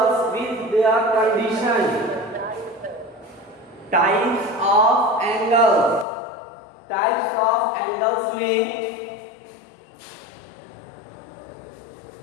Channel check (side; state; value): right; drops out; at 6.1 s